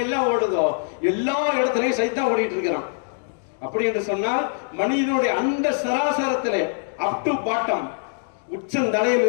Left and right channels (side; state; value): right; silent; digital silence